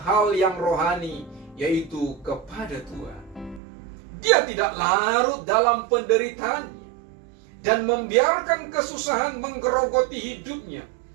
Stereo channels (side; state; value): left; drops out; at 3.6 s